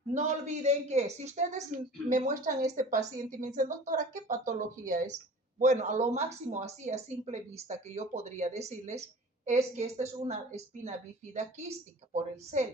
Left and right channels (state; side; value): normal; both; correlation 0.42